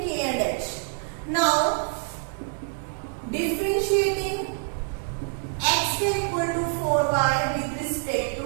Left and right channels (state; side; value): silent; left; 58 dB below the other